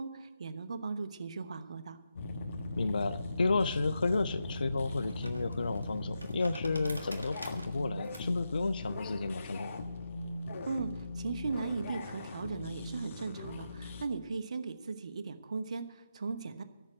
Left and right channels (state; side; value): inverted; both; correlation -0.87